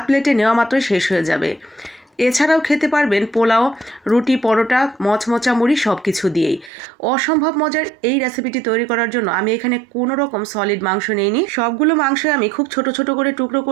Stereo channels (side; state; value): left; drops out; at 6.7 s